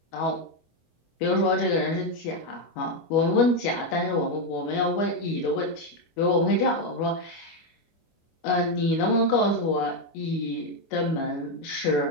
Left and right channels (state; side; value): late; right; 25 ms